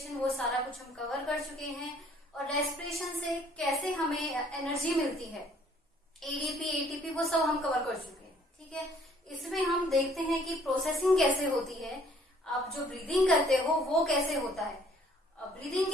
वो सारा कुछ हम कवर कर चुके हैं। और रेस्पिरेशन से कैसे हमें एनर्जी मिलती है, एडीपी एटीपी, वो सब हम कवर कर चुके हैं। ठीक है, इसमें हम देखते हैं कि प्रोसेसिंग कैसे होती है, आप जो ब्रीदिंग करते हो वो कैसे होता है। ब्रीदिंग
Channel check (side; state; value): both; normal; correlation 0.60